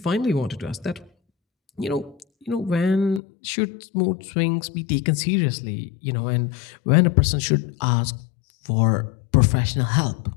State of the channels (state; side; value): drops out; right; at 3.2 s